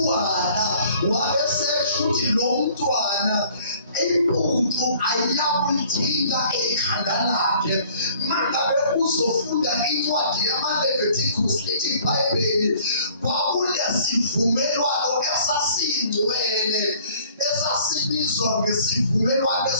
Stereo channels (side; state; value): both; inverted; correlation -0.55